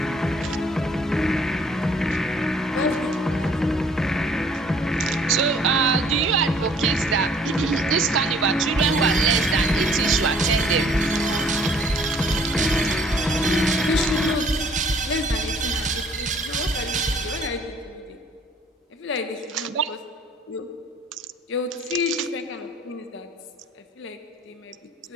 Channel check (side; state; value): both; normal; correlation 0.58